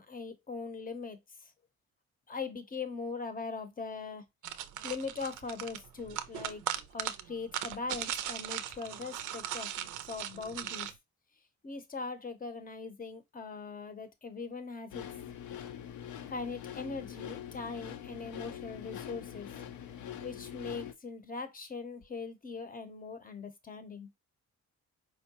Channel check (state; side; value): normal; both; correlation 0.14